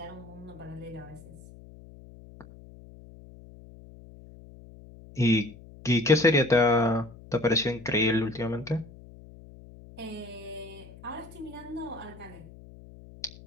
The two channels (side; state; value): left; noise; hum, 19 dB below the sound